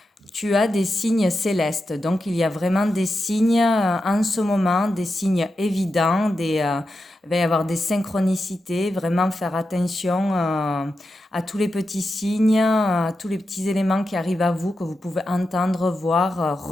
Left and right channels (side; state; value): both; normal; correlation 0.89